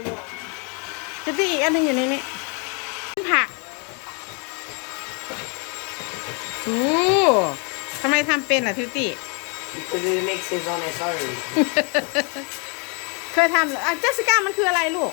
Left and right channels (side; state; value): right; quieter; 35.6 dB